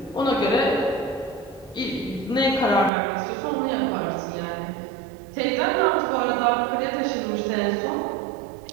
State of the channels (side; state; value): left; drops out; at 2.9 s